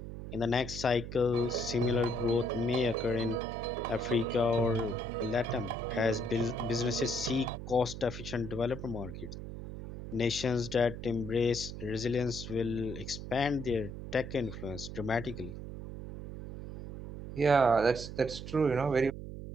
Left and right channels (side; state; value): right; noise; hum, 9 dB below the sound